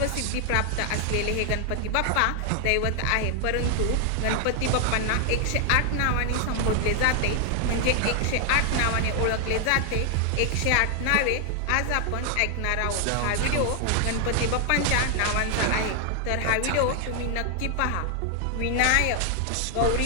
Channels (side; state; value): both; different; correlation 0.00